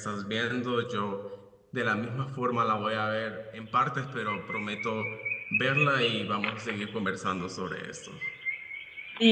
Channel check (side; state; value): both; identical; correlation 1.00